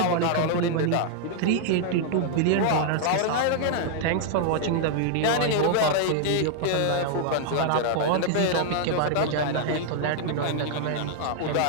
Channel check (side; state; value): both; different; correlation 0.00